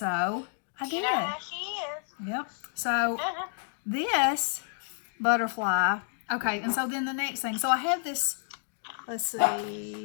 I did. You know how she is. Yep. So this butterfly, okay, and so then the next thing, so I have this, let's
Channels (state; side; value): silent; right; digital silence